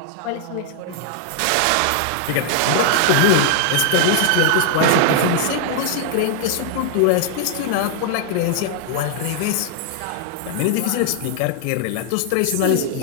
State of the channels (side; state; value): both; different; correlation 0.00